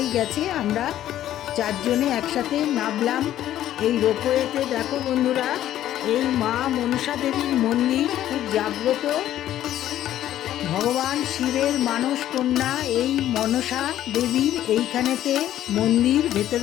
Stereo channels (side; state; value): right; quieter; 12.4 dB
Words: গেছে। আমরা 4 জনে একসাথে নামলাম এই রোপওয়েতে। দেখো বন্ধুরা, এই মা মনসা দেবীর মন্দির খুব জাগ্রত। ভগবান শিবের মানস কন্যা এই মনসা দেবীর এইখানেতে মন্দির।